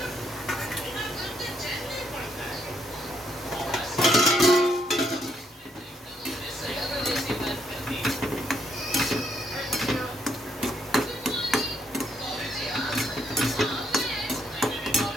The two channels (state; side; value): normal; both; correlation 0.73